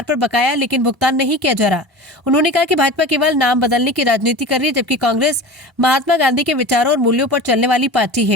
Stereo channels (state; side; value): normal; both; correlation 0.34